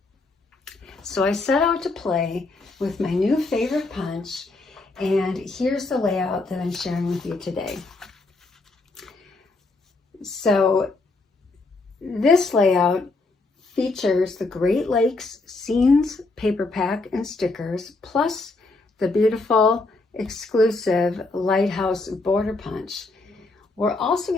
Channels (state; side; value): quieter; right; 3.4 dB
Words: So I set out to play with my new favorite punch, and here's the layout that I'm sharing with you today. So this layout features the Great Lakes Scenes paper pack and stickers, plus the beautiful exclusive Lighthouse border punch. We're also